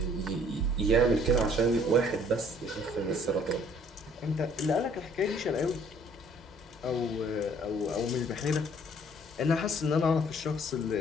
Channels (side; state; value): both; normal; correlation 0.58